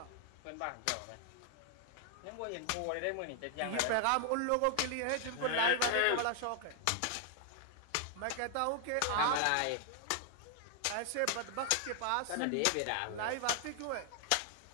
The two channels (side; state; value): both; different; correlation 0.00